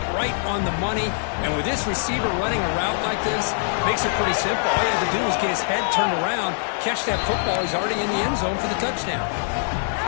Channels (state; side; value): silent; right; digital silence